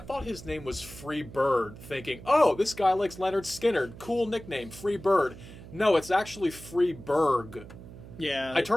his name was Free Bird, thinking, oh, this guy likes Leonard Skinner. Cool nickname, Free Bird. No, it's actually Free Berg. Yeah. I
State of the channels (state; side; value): noise; right; hum, 16 dB below the sound